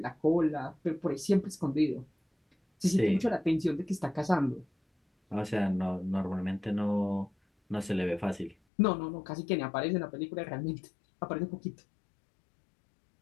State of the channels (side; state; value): right; drops out; at 8.6 s